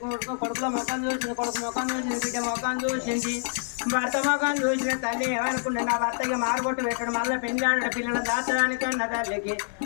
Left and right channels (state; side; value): silent; right; 60 dB below the other